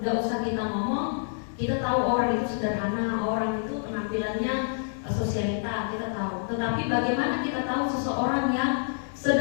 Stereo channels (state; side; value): silent; right; digital silence